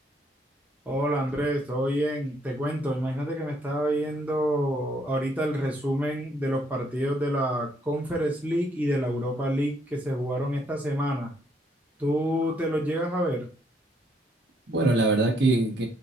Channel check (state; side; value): normal; both; correlation 0.70